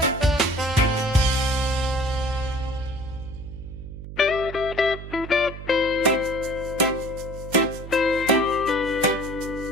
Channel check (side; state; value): right; noise; hum, 11 dB below the sound